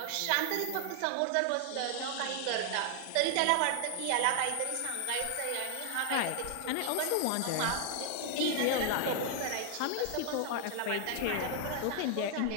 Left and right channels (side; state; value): both; different; correlation 0.00